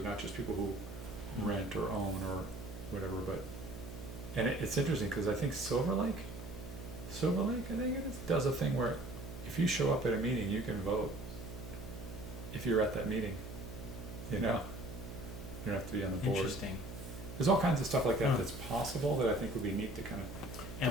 not just people who rent or own or whatever, but, and it's interesting because I think Silver Lake, I think it is, does a thing where if you show up at a meeting, you can vote if you're at that meeting, you don't have to be on the board. Interesting. There's all kinds of stuff like that Huh. that's possible that I think would be neat to kind of And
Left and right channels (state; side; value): noise; right; hum, 10 dB below the sound